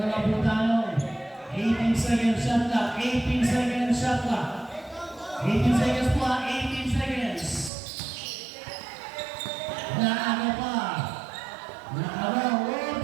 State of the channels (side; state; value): left; drops out; at 7.7 s